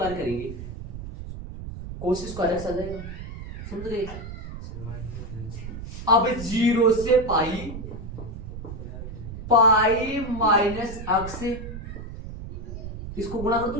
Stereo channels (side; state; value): right; noise; rumble, 9 dB below the sound